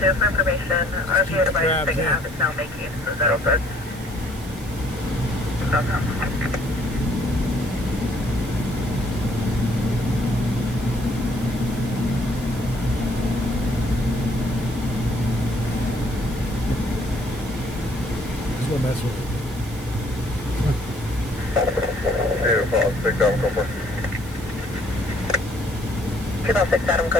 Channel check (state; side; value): noise; right; hiss, 20 dB below the sound